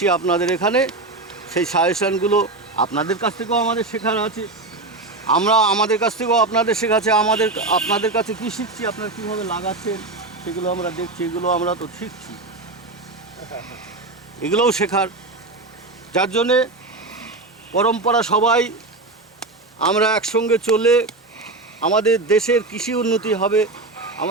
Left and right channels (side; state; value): left; quieter; 3.2 dB